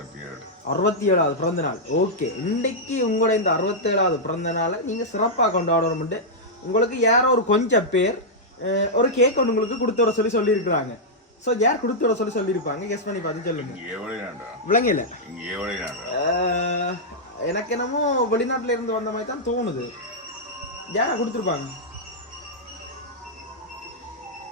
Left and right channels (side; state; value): both; normal; correlation -0.07